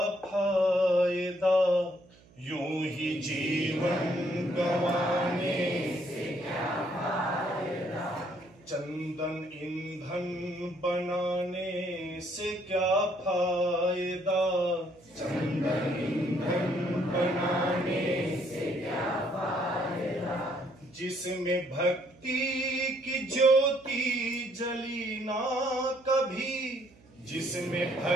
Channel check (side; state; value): right; noise; hum, 27 dB below the sound